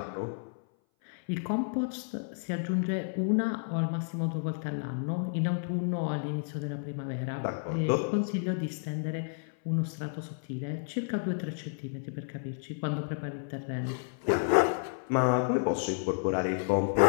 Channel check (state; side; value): silent; right; 57 dB below the other